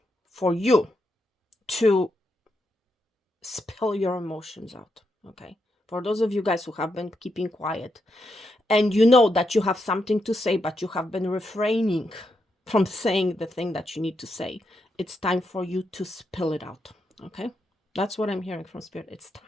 for you to spill your emotions out. Okay, for those of you guys who have been keeping quiet, and you know that you have something to say, but you have been refraining from saying the thing that you need to say, it's time for you to spill it out. Okay, that's what I'm hearing from Spirit. It's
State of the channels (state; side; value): normal; both; correlation 0.82